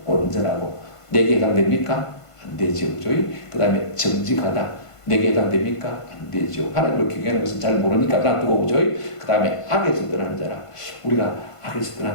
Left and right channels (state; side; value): late; right; 1.5 ms